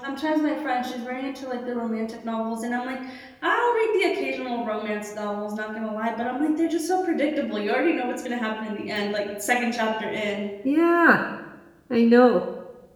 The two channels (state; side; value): identical; both; correlation 1.00